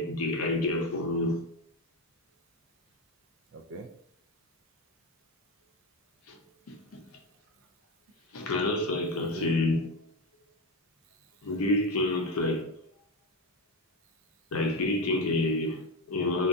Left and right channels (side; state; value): both; normal; correlation 0.15